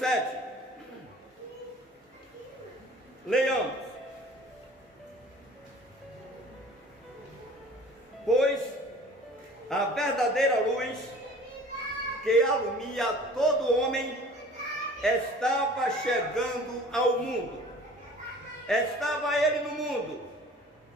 Leiamos. Pois a verdadeira luz que alumia todo homem estava chegando ao mundo. Estava ele no mundo,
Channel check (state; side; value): normal; both; correlation 0.46